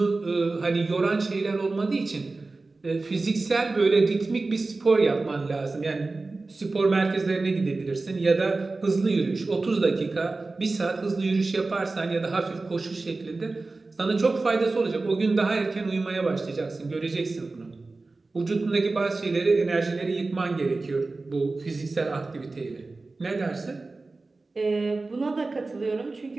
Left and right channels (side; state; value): left; quieter; 3.5 dB